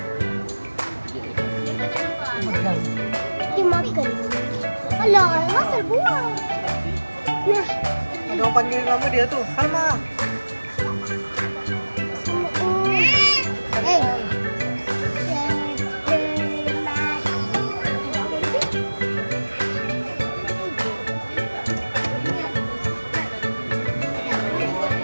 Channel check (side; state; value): both; inverted; correlation -1.00